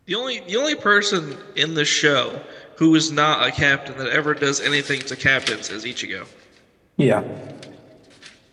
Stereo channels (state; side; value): identical; both; correlation 1.00